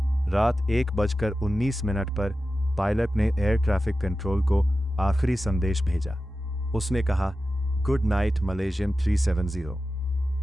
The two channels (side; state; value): both; normal; correlation 0.93